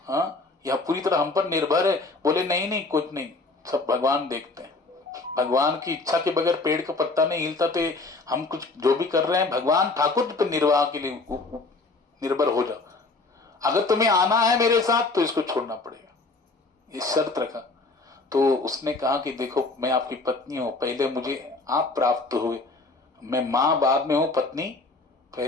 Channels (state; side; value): quieter; right; 3.5 dB